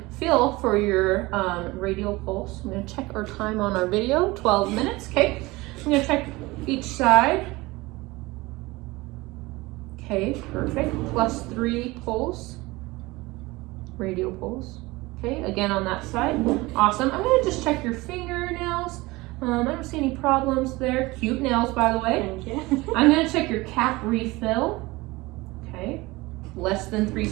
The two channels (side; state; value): left; quieter; 21.5 dB